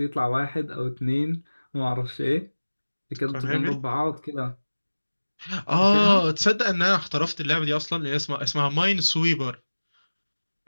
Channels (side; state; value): both; inverted; correlation -1.00